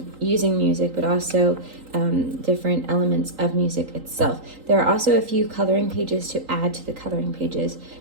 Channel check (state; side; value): late; left; 3.8 ms